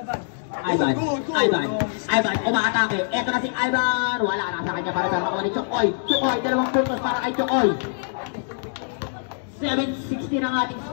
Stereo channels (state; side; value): silent; right; digital silence